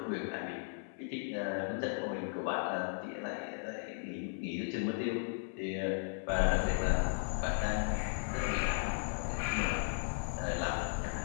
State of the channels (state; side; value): silent; right; 54 dB below the other